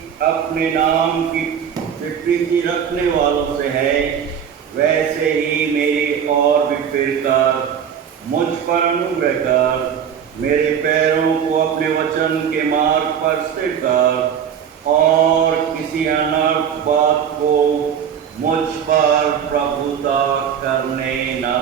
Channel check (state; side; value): quieter; left; 8.2 dB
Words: अपने नाम की प्रीति रखने वालों से है, वैसे ही मेरी और भी फिर कर मुझ पर अनुग्रह कर। मेरे पैरों को अपने वचन के मार्ग पर स्थिर कर और किसी अनर्थ बात को मुझ पर प्रभुता करने न